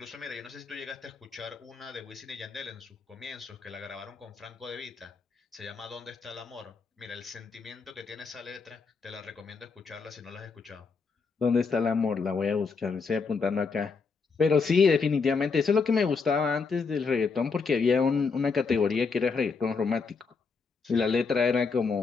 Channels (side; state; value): right; quieter; 4.9 dB